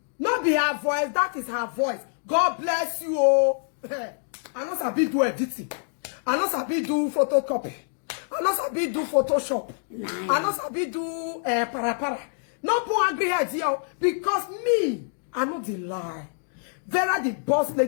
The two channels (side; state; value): right; silent; digital silence